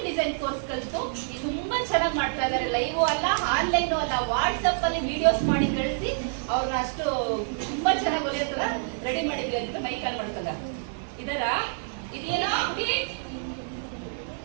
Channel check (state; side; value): silent; left; 60 dB below the other